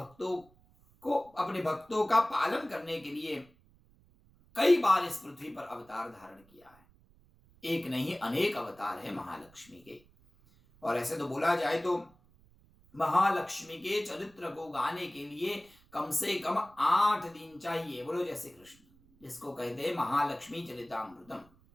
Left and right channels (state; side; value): noise; right; rumble, 29 dB below the sound